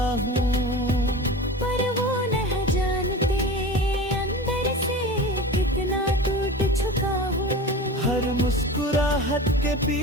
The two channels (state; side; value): normal; both; correlation 0.33